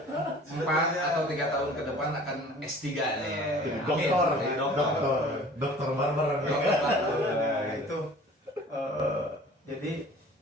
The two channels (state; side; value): normal; both; correlation 0.47